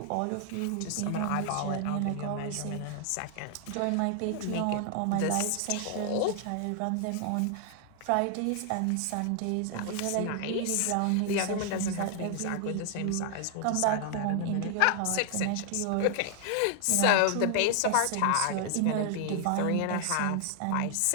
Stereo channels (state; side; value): different; both; correlation 0.00